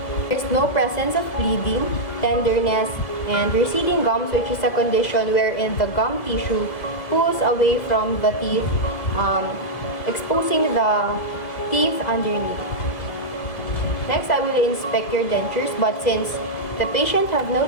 There is no presence of bleeding, tenderness, and receding gums, which is a condition wherein the gum tissue pulls away from the teeth, exposing the teeth underneath. Next, I will inspect your dentures, but since the patient have no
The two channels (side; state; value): right; late; 2.0 ms